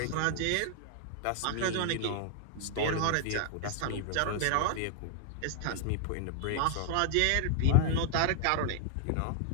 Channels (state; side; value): different; both; correlation 0.00